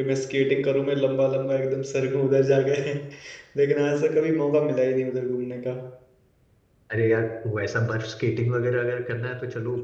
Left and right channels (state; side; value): identical; both; correlation 1.00